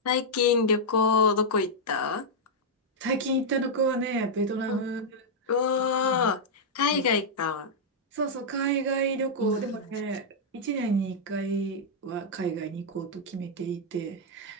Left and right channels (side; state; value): both; normal; correlation -0.06